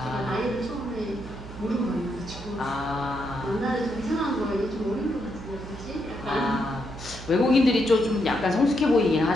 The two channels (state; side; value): noise; right; hum, 13 dB below the sound